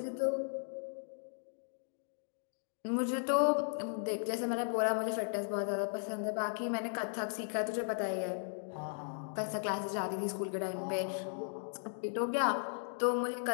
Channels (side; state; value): right; silent; digital silence